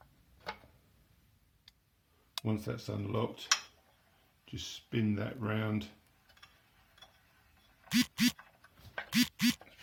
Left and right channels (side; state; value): both; identical; correlation 1.00